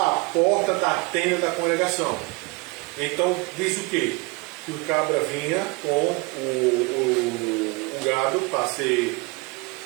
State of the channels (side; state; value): left; quieter; 26.2 dB